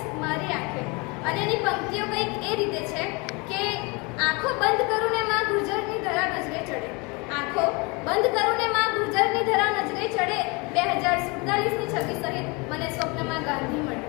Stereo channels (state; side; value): quieter; right; 28.5 dB